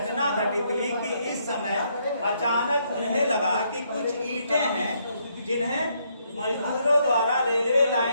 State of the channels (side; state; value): both; inverted; correlation -0.73